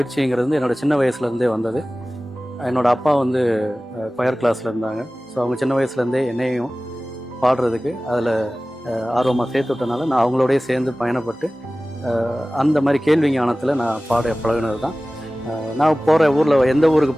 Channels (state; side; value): normal; both; correlation 0.97